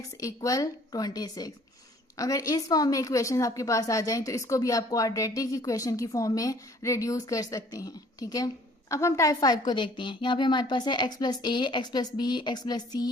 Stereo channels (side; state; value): both; normal; correlation 0.55